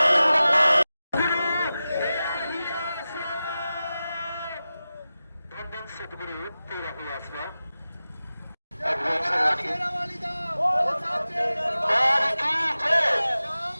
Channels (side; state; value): both; inverted; correlation -0.95